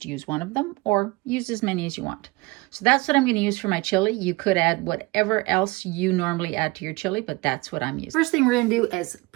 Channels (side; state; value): left; quieter; 23.6 dB